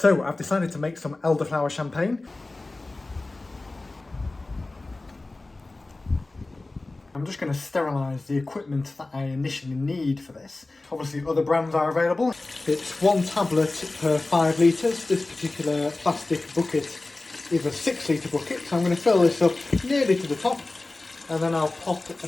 So I've decided to make some elderflower champagne. I'm just going to sterilise the equipment that I initially need for this. Obviously other brands are available. It's 1 tablet per 5 litres. This particular plastic bucket is a 6 litre bucket, so I'm going to fill this up nearly to the top, and then I'll pop a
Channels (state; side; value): quieter; right; 3.1 dB